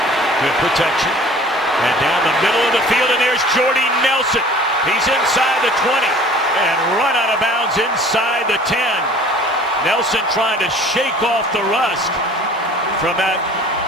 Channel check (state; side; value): normal; both; correlation 0.48